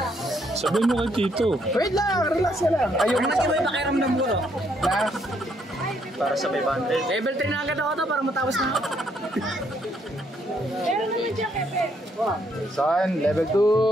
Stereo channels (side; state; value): both; normal; correlation 0.71